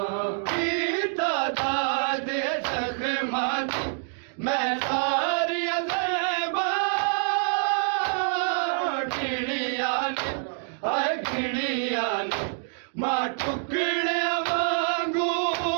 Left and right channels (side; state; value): left; silent; 61 dB below the other